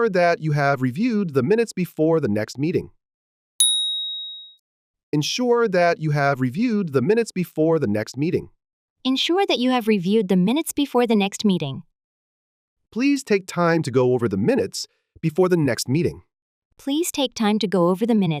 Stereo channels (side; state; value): both; identical; correlation 1.00